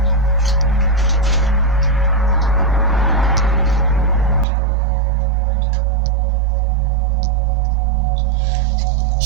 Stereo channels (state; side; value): drops out; left; at 4.5 s